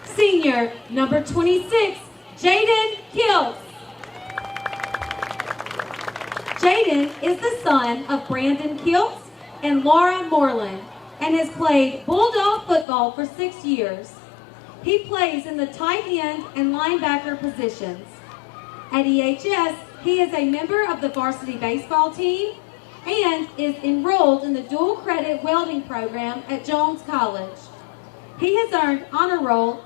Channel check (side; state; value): right; drops out; at 12.9 s